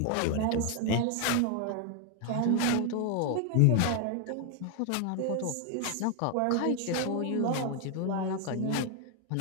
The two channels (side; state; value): both; different; correlation 0.00